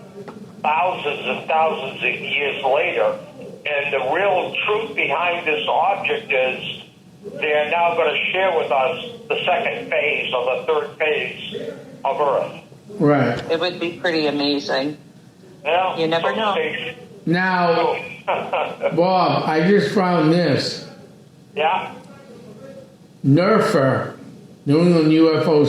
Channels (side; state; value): both; identical; correlation 1.00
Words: thousands and thousands of years later. And the real truth behind this object is they are now going to share with us the second phase or the third phase of Earth. Right. It would be pretty amazing. Well, You never know. Now, Bob, I just found this. Yeah. NERFA, New England UFO